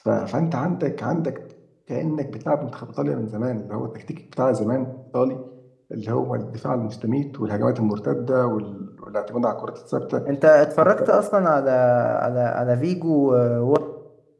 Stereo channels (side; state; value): both; identical; correlation 1.00